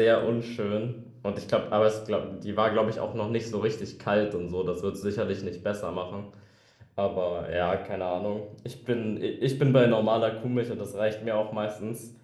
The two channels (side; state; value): both; identical; correlation 1.00